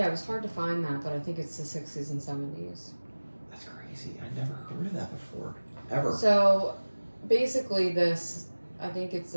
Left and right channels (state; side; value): inverted; both; correlation -1.00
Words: it was hard to find that, but I think it's the 60s and 70s. That's crazy. I never heard of that before. Ever. So, basically, this, I think it's